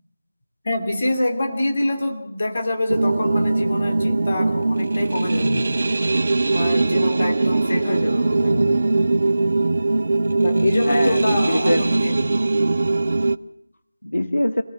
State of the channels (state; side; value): inverted; both; correlation -0.96